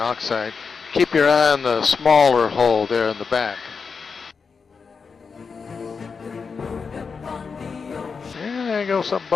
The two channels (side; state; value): right; quieter; 5.3 dB